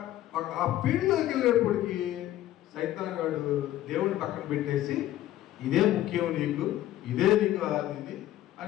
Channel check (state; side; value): quieter; right; 13.7 dB